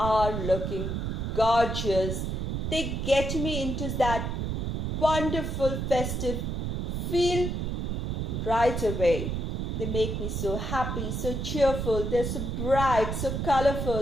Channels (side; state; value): right; noise; rumble, 2 dB below the sound